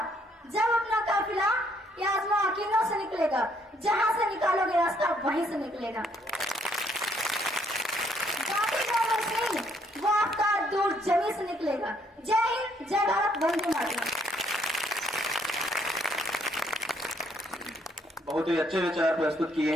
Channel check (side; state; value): both; normal; correlation 0.68